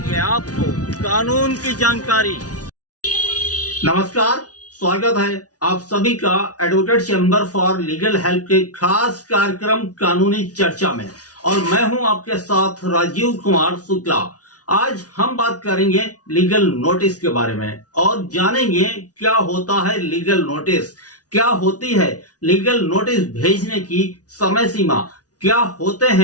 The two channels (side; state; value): right; late; 0.68 ms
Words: आपको कानून की जानकारी। नमस्कार, स्वागत है आप सभी का advocate chamber for legal help के खास कार्यक्रम कानूनी चर्चा में। और मैं हूं आपके साथ राजीव कुमार शुक्ला। आज हम बात करेंगे लीगल नोटिस के बारे में और जानेंगे क्या होता है लीगल नोटिस, क्या होती है लीगल नोटिस भेजने की समय सीमा, क्या होते